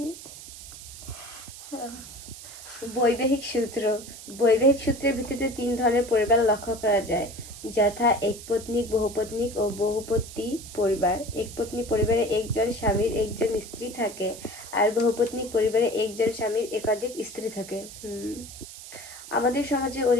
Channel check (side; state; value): right; noise; hiss, 14 dB below the sound